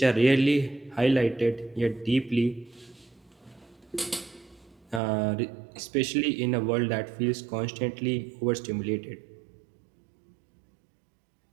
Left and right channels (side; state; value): left; drops out; at 5.0 s